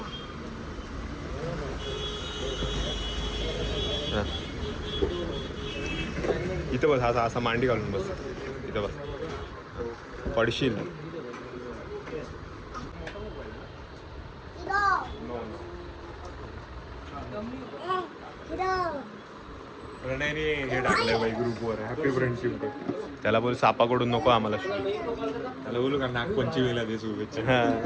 इथं बस असा असा मांडी घालून बस इथं बस पडशील प्रणयने हे टाकलंय बाई ग्रुपवर हॅपी फ्रेंडशिप डे त्याला बोल सापाकडून नको आम्हाला त्याला बोलू का नागपंचमीला दे शुभेच्छा. हा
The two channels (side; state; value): both; identical; correlation 1.00